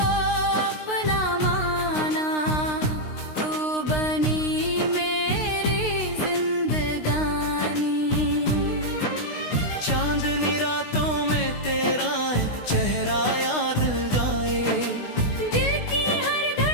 अपना माना, तू बनी मेरी जिंदगानी। चांदनी रातों में तेरा चेहरा याद गाए, दिल की हर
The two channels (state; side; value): late; right; 16 ms